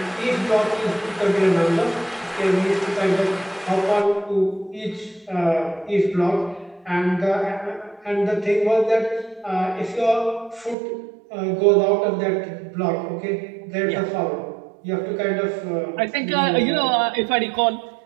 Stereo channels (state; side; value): drops out; left; at 10.8 s